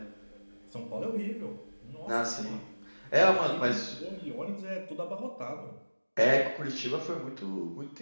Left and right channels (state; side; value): inverted; both; correlation -1.00